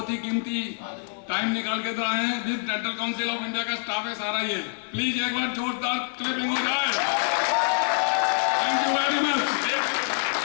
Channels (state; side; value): silent; right; 55 dB below the other